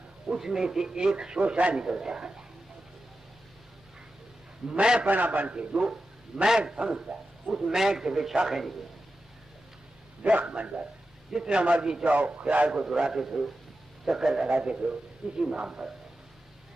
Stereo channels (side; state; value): both; normal; correlation 0.92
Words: उसमें से एक शोषा निकलता है। मैं पना बन के जो मैं समझता उस मैं से शाखें निकलती, दरख्त बन जाता। जितना मर्जी चाहो ख्याल को दुराते थे, चक्कर लगाते थे, इसी नाम पर